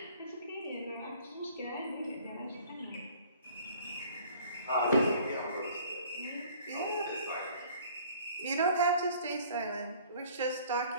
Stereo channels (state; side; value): inverted; both; correlation -0.53